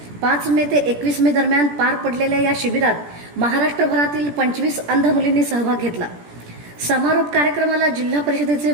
5 मे ते 21 मे दरम्यान पार पडलेल्या या शिबिरात महाराष्ट्रभरातील 25 अंध मुलींनी सहभाग घेतला. समारोप कार्यक्रमाला जिल्हा परिषदेचे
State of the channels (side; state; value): left; late; 17 ms